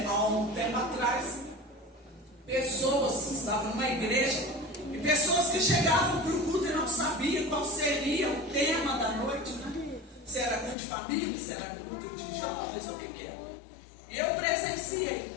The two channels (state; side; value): drops out; right; at 10.8 s